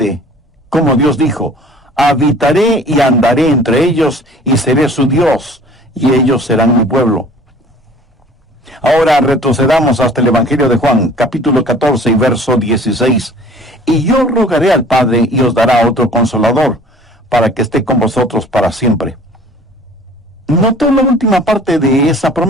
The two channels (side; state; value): both; normal; correlation 0.49